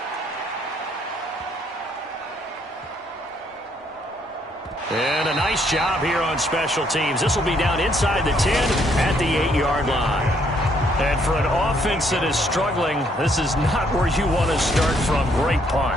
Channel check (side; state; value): both; normal; correlation 0.69